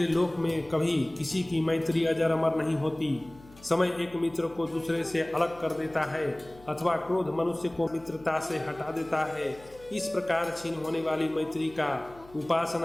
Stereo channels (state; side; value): noise; left; hum, 23 dB below the sound